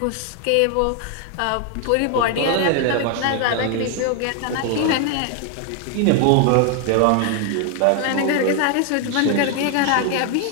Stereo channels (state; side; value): different; both; correlation 0.01